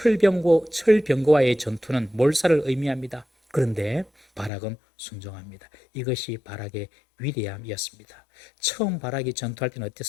전투는 몰살을 의미합니다. 그런데 바락은 순종합니다. 이것이 바락의 위대함이었습니다. 처음 바락이 전투할 때는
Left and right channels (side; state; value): right; drops out; at 4.5 s